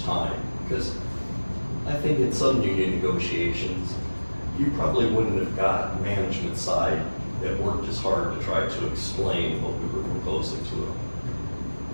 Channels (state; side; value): inverted; both; correlation -1.00